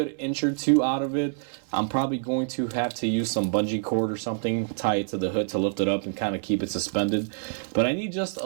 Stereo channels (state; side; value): silent; left; digital silence